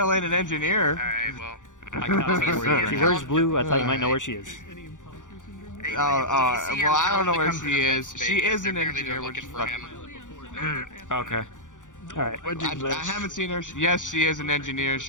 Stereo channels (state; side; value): late; right; 0.87 ms